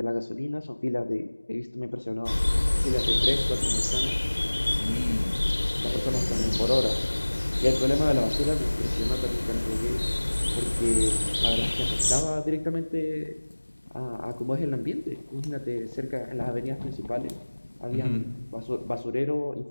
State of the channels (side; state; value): both; inverted; correlation -1.00